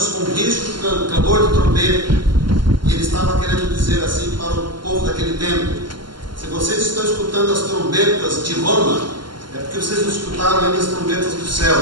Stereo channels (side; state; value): left; late; 0.72 ms